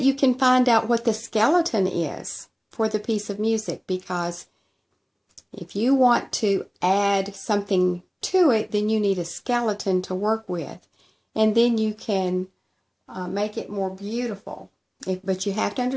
you can find out what the skeleton is for the piece of music, because if you want to add something to it, then you need a skeleton to work with, and then you can make it more beautiful. But you have to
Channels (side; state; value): both; identical; correlation 1.00